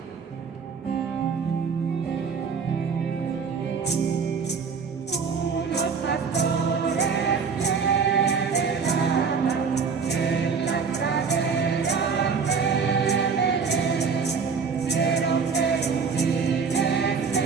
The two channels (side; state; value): left; quieter; 5.7 dB